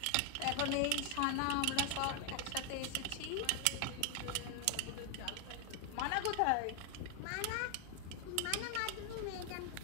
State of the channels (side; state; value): both; different; correlation 0.00